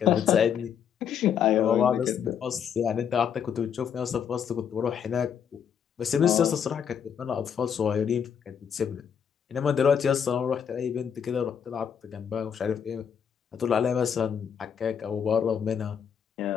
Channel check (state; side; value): quieter; right; 7.8 dB